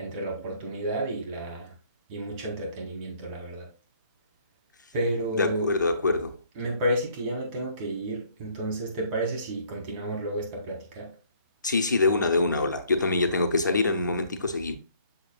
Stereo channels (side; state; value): both; inverted; correlation -0.62